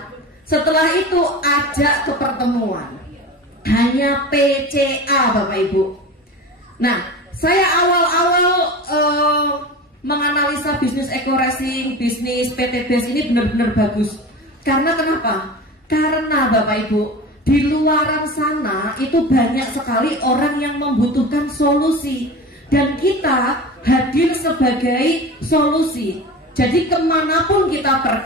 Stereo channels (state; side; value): normal; both; correlation 0.32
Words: Setelah itu ajak ke pertemuan. Hanya PCA Bapak Ibu. Nah, saya awal-awal menganalisa bisnis Eco Racing, bisnis PT BES ini benar-benar bagus. Karena kenapa? Karena Bapak Ibu, di luaran sana itu banyak sekali orang yang membutuhkan solusi. Dan kita hadir sebagai solusi. Jadi kemanapun kita